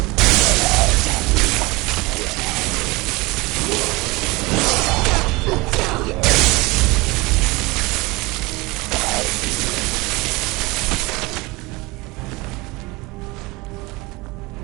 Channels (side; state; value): left; quieter; 23.6 dB